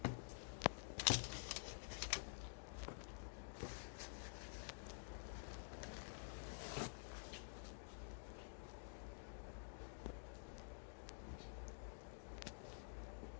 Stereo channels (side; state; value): right; silent; digital silence